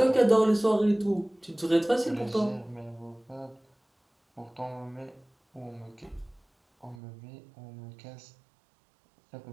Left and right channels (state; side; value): drops out; left; at 7.0 s